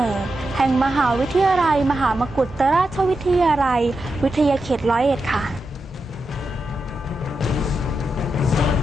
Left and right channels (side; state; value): both; normal; correlation 0.87